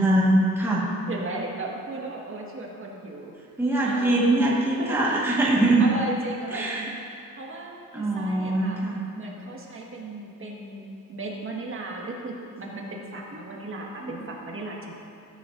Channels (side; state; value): both; normal; correlation 0.60